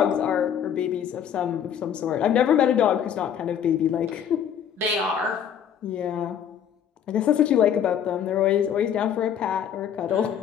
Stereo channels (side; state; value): right; quieter; 8.8 dB